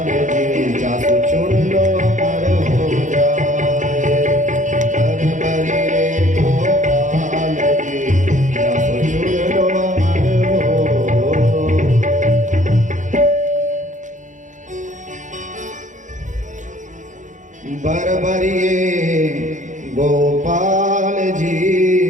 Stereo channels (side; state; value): left; late; 0.36 ms